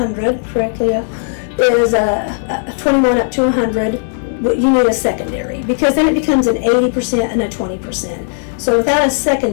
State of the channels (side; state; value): right; silent; digital silence